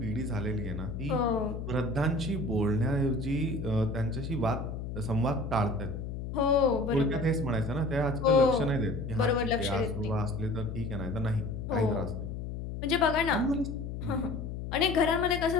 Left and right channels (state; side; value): noise; left; hum, 6 dB below the sound